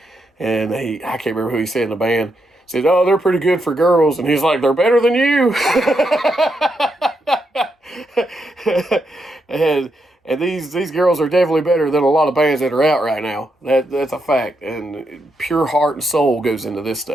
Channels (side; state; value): both; normal; correlation 0.82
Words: And I can't remember who he said in the band. Said, oh, they're pretty good for girls. And he's like, they're better than you. and these girls are definitely better than a lot of bands that are out right now. That's a fact. And pure heart and soul goes into this